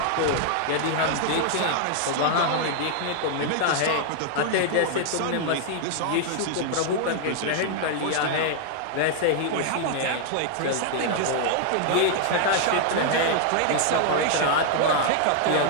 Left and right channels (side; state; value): both; different; correlation -0.01